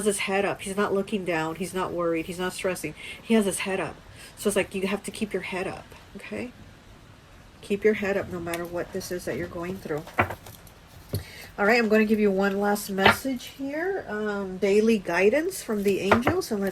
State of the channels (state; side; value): identical; both; correlation 1.00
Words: his head up. He's not looking down. He's not worried. He's not stressing. He has his head up. So it's like you have to keep your head up, okay? Keep your head up no matter what this is that you're going through. All right, I'm going to give you one last message here. Daily guidance from the angels. And